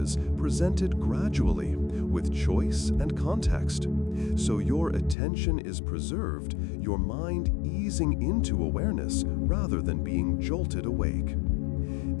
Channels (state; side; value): drops out; right; at 5.2 s